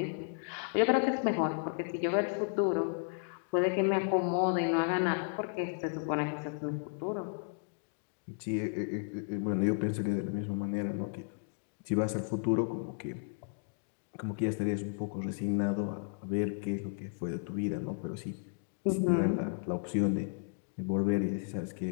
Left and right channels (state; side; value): silent; right; digital silence